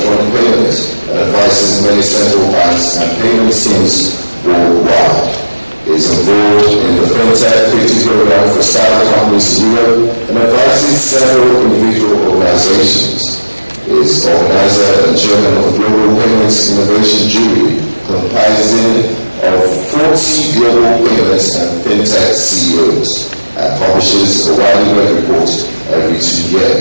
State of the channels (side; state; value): both; inverted; correlation -1.00